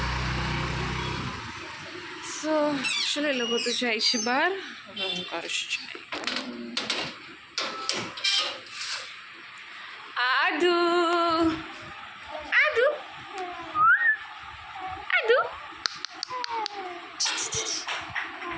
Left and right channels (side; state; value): both; identical; correlation 1.00